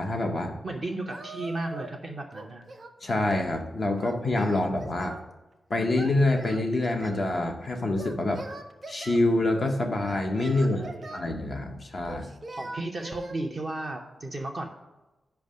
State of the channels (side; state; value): both; normal; correlation 0.88